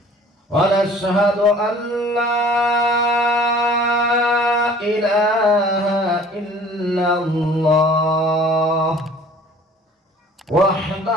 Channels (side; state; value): both; normal; correlation 0.50